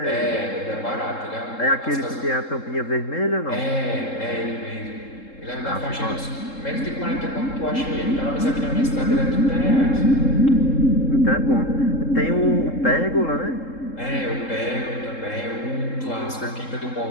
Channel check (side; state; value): right; late; 3.7 ms